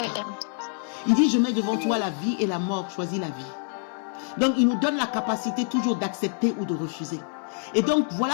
Il dit, je mets devant toi la vie et la mort, choisis la vie. Donc il nous donne la capacité toujours d'accepter ou de refuser. Et donc voilà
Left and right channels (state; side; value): silent; right; 61 dB below the other